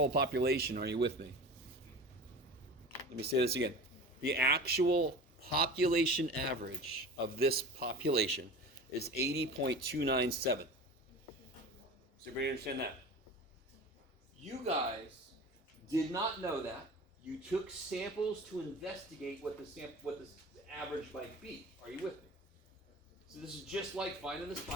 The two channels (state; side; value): normal; both; correlation 0.35